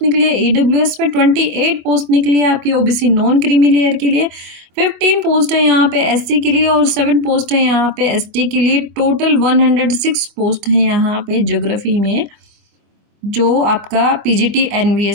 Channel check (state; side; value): late; left; 24 ms